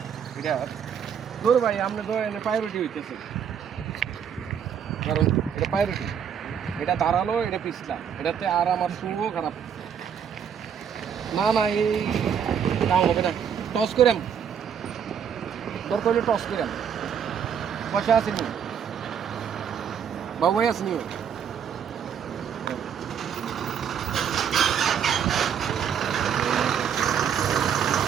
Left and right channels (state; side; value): quieter; left; 7.9 dB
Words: এটা তোর ভাই আপনি তো এনে প্রায়োরিটি হইতেছে কারণ এটা প্রায়োরিটি এটা দাঁড়ালো এটা পিছলা এটাতে আর আমার শুভও খারাপ না না এই কাম হবে না টস করে দরকার হলে টস করে পয়সা আসেনি বাবু ভাই আসেনি